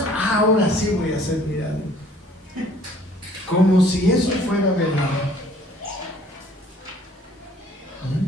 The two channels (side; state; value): both; normal; correlation 0.56